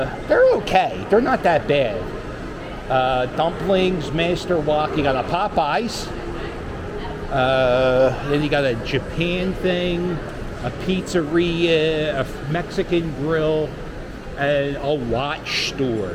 okay. They're not that bad. Dumplings, Master Wok. You got a Popeyes. Then you got a Japan thing, a pizzeria, a Mexican grill, and a watch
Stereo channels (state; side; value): identical; both; correlation 1.00